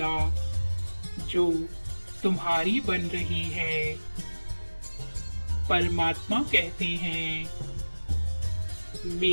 जो तुम्हारी बन रही है। परमात्मा कहते हैं,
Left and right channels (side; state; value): both; inverted; correlation -1.00